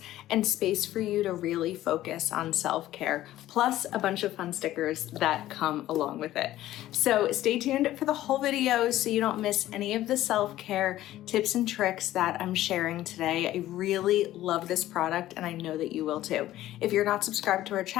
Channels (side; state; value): right; quieter; 14.4 dB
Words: and space for you to really focus on self-care, plus a bunch of fun stickers that come along with it. So stay tuned for the whole video so you don't miss any of the self-care tips and tricks that I'm sharing today. I really love this product and I know that you will too. If you're not subscribed to our